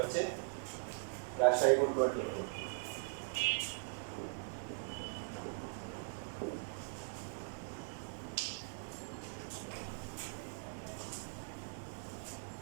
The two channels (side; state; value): left; silent; digital silence